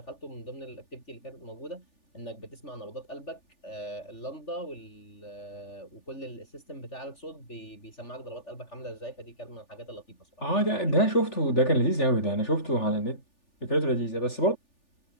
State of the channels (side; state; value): right; late; 3.4 ms